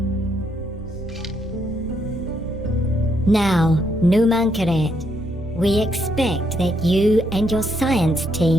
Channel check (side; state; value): both; normal; correlation 0.75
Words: Now, Numankaret, we expect that you and your science